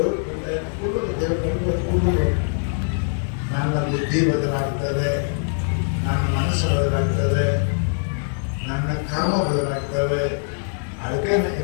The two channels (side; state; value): right; silent; digital silence